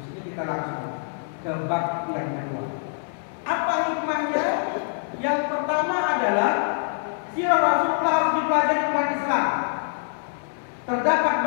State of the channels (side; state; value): right; silent; 62 dB below the other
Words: ini kita langsung ke bab yang kedua. Apa hikmahnya? Yang pertama adalah sirah Rasulullah harus dipelajari umat Islam. Terdapat